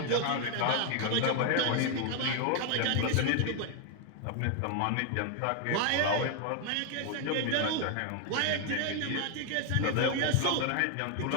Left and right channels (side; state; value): both; different; correlation 0.01